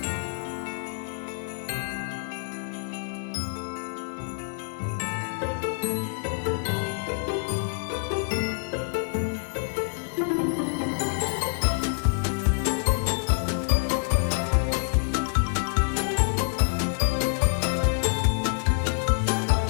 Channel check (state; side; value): silent; right; digital silence